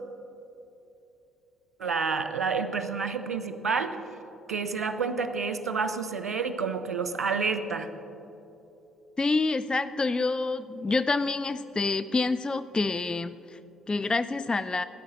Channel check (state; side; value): normal; both; correlation 0.68